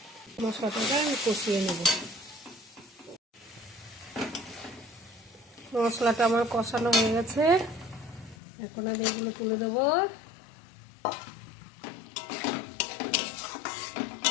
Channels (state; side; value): drops out; right; at 8.3 s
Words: মশলাটাকে আমি কষিয়ে নেব। মশলাটা আমার কষানো হয়ে গেছে, এখন আমি এগুলো তুলে দেবো।